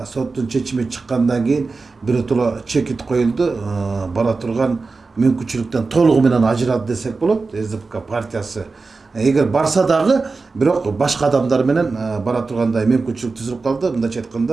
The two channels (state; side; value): quieter; left; 4.1 dB